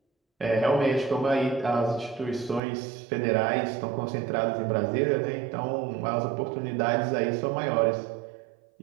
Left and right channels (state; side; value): drops out; left; at 2.6 s